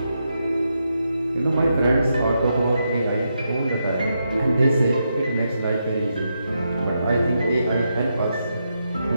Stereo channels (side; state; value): both; inverted; correlation -0.84